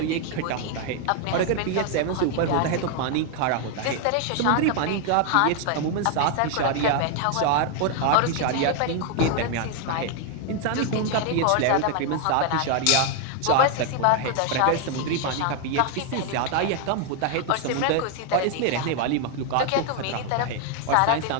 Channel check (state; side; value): different; both; correlation 0.00